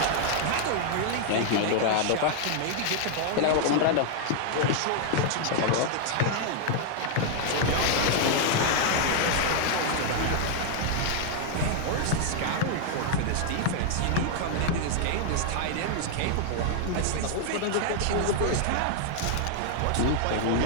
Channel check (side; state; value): both; different; correlation 0.00